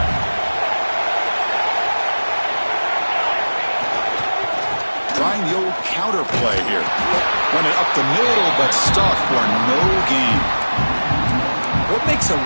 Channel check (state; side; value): inverted; both; correlation -1.00